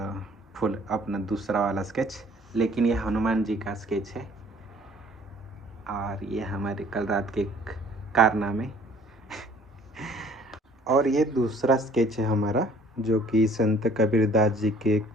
फुल अपना दूसरा वाला स्केच, लेकिन ये हनुमान जी का स्केच है। और ये हमारे कल रात के कारनामे। और ये दूसरा स्केच है हमारा, जो कि संत कबीरदास जी के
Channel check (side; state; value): both; normal; correlation 0.55